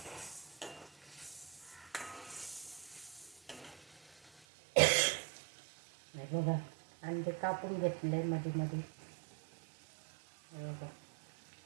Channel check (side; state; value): left; drops out; at 4.3 s